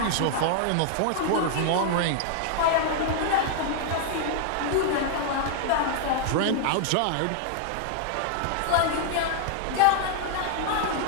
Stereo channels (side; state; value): both; different; correlation 0.00